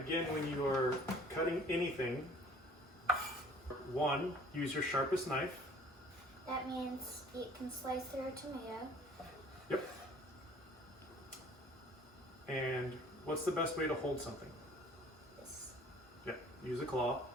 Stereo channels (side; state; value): both; normal; correlation 0.52